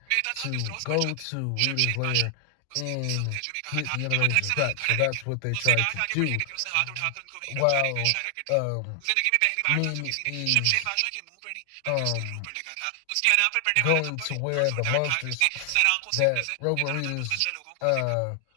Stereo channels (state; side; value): different; both; correlation 0.00